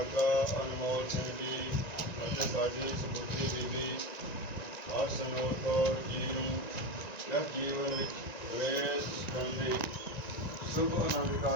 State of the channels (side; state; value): right; late; 1.9 ms